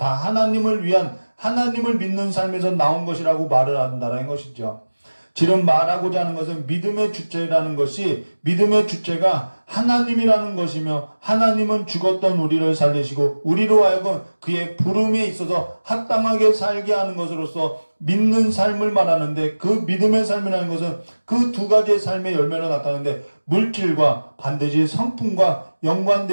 하나님을 위한, 하나님을 믿는 삶에서 나온 것이라고 말을 한다는 것이죠. 지금 말하고자 하는 것은 믿음의 주체라는 것이 믿음의 주체가 하나님이라는 것이며 하나님은 죽었던 우리를 살리시고 우리로 하여금 그의 부름에 있어서 합당하게 살게 하는 것으로서 믿는 삶을 말하는데 그 믿음의 삶이라는 것은 그 두 가지의 삶의 열매로 나타나는데 물질과 반드시 성품과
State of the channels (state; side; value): inverted; both; correlation -1.00